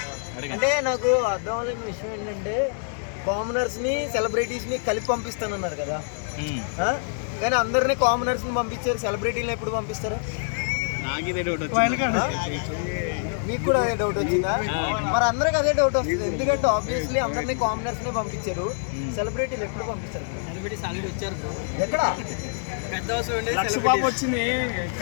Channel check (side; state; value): right; silent; 61 dB below the other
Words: అంటే నాకు అర్థం అవ్వలేని విషయం ఏంటంటే కామనర్స్ ని సెలబ్రిటీస్ ని కలిపి పంపిస్తానన్నారు కదా, కానీ అందరినీ కామనర్స్ ని పంపించారు, సెలబ్రిటీని ఎప్పుడు పంపిస్తారు? మీకు కూడా అదే డౌట్ వచ్చిందా? మరి అందరికి అదే డౌట్ వస్తుంది, ఎందుకంటే ఆబ్వియస్లీ అందరినీ కామనర్స్ ని పంపించారు, సెలబ్రిటీలు ఎప్పుడు పంపిస్తారు? ఎక్కడ